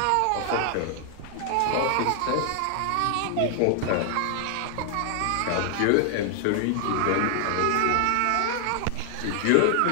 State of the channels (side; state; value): both; different; correlation 0.00